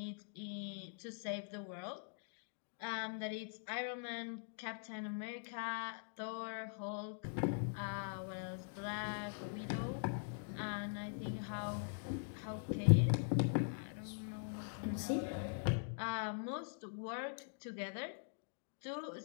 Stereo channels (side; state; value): right; silent; digital silence